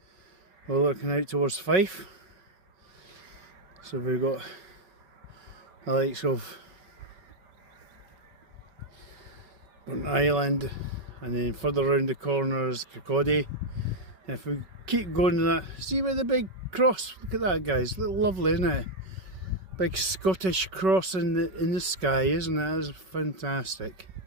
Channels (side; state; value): left; late; 5.3 ms